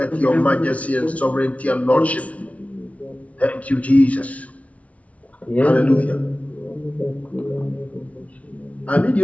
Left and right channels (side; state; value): right; late; 0.066 ms